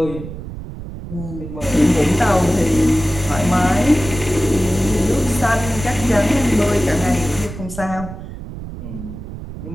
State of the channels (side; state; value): right; noise; rumble, 11 dB below the sound